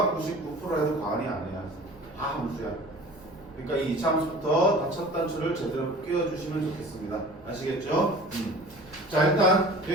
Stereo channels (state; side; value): noise; right; rumble, 23 dB below the sound